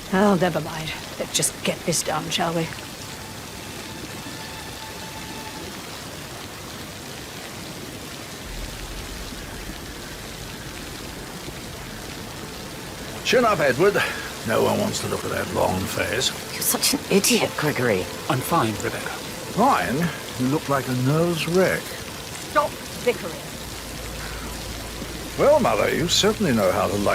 Oh, never mind. Let's just get this done, shall we? Chin up, Edward. No one wants to look at that long face. You're such an idiot, Gregory. I'm fine, Rebecca. Ryan, you look like a nervous wreck. Stop bickering. Well, Mother, you certainly know how to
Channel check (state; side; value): identical; both; correlation 1.00